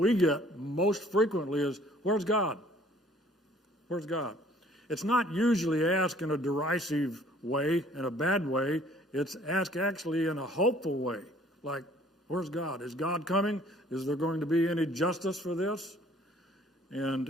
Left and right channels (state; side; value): normal; both; correlation 0.56